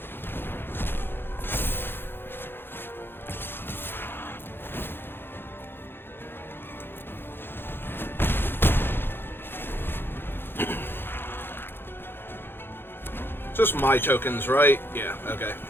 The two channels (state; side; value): late; right; 0.10 ms